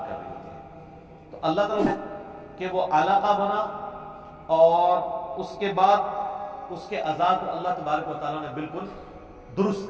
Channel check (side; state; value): both; identical; correlation 1.00